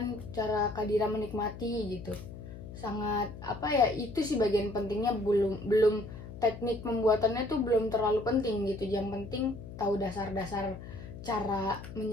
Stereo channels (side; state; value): left; noise; hum, 12 dB below the sound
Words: cara Kak Dira menikmati gitu. Sangat itu sih bagian pentingnya. Belum belum teknik pembuatannya tuh belum terlalu penting gitu, yang penting tahu dasar-dasar cara